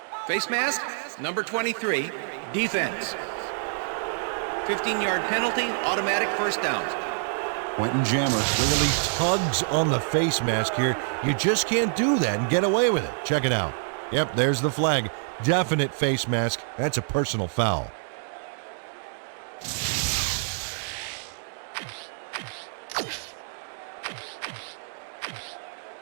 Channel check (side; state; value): left; silent; 60 dB below the other